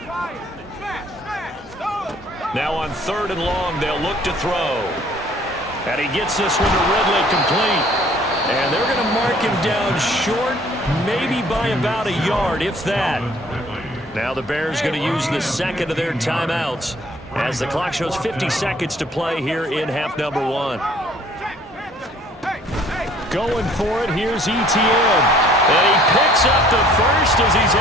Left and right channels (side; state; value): both; normal; correlation 0.56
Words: Now on 3rd and long, they'll look to throw. And he gets this one to Ridley, complete. And they're going to mark him down short, maybe by about a yard, if that. Now the Bears going to use the second of their timeouts, as the clock shows 50 seconds to play here in half number 1. Going for it, here's ETN. And he picks up the first as he's